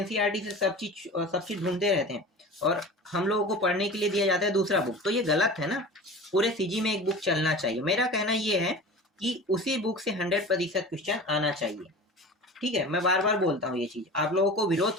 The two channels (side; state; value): both; normal; correlation 0.36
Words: से सब चीज ढूंढते रहते हैं, और हम लोगों को पढ़ने के लिए दिया जाता है दूसरा बुक। तो ये गलत है ना, पूरे सीजी में एक बुक चलना चाहिए। मेरा कहना ये है कि उसी बुक से 100% क्वेश्चन आना चाहिए, ठीक है। मैं बार बार बोलता हूँ ये चीज, आप लोगों को